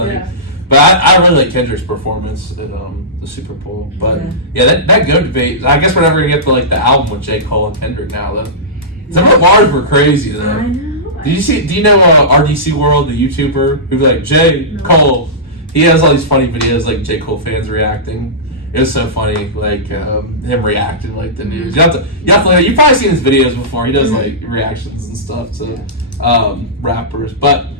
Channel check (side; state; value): both; normal; correlation -0.19